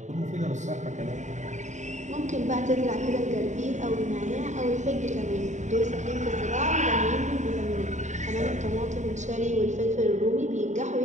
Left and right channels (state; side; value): late; left; 0.34 ms